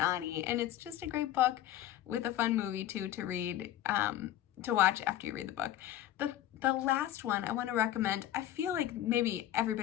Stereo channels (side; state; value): right; quieter; 12.9 dB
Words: and it's just a great book with a fun movie too to read, to watch after you read the book. The last one I want to recommend, I feel like maybe